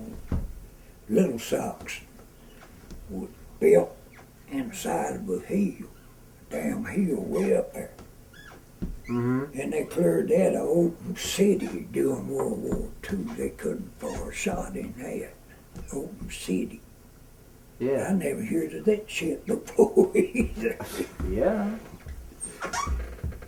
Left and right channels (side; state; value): both; identical; correlation 1.00